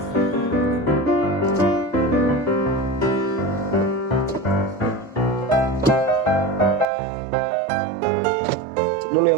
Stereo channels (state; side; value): drops out; left; at 6.9 s